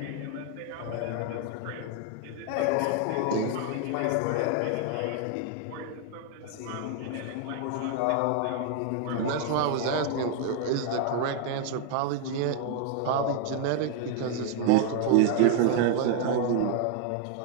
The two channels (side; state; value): both; different; correlation 0.00